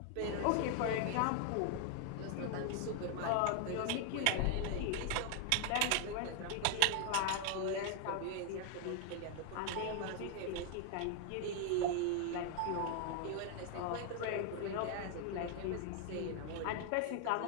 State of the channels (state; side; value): different; both; correlation 0.00